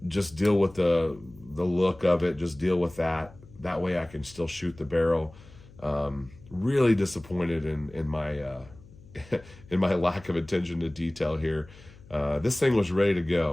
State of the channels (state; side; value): noise; left; hum, 22 dB below the sound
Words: just deal with the look of it, just deal with that. That way I can still shoot the barrel. Really disappointed in my in my lack of attention to detail here. This thing was ready to